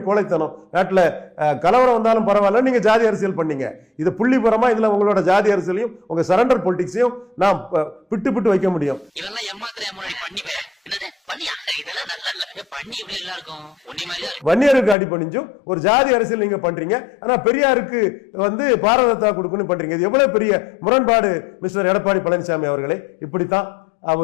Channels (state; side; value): drops out; right; at 15.0 s